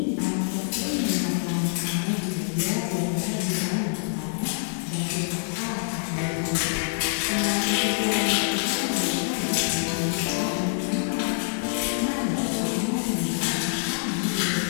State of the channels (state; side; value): silent; right; 61 dB below the other